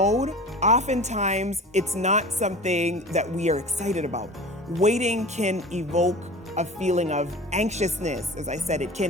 oftentimes it's not something that we are excited about. Waiting can evoke a feeling of anxiousness. As I said, it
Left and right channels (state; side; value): normal; both; correlation 0.37